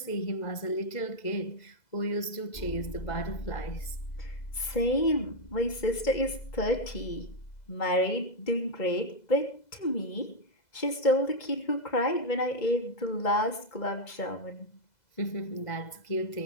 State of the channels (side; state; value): right; late; 2.0 ms